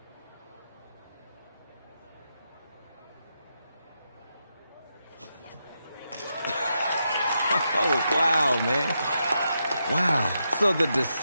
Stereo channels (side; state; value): both; inverted; correlation -0.84